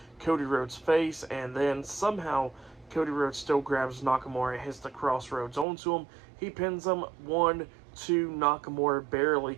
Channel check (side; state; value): left; drops out; at 5.7 s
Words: Cody Rhodes' face, and then somehow Cody Rhodes still grabs Nakamura and hits the crossroads onto him. He pins him 1, 2, Nakamura barely